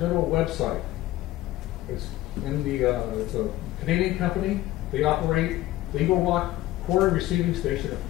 website. It's in the it's a Canadian company. They operate the Eagle Rock Quarry Receiving Station at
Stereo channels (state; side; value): quieter; right; 15.7 dB